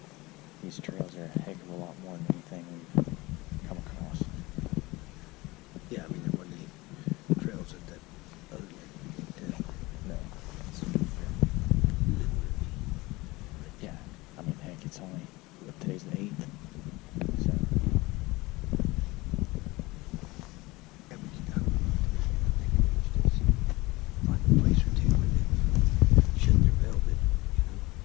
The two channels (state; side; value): quieter; right; 21.7 dB